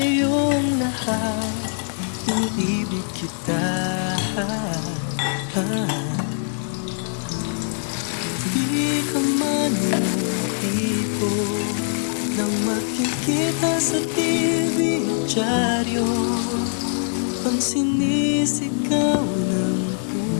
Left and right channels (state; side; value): silent; right; 59 dB below the other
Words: lahat, iniibig kita. Di ka man yung tipo nang makikita sa TV at dyaryo. Pang sinisigaw ng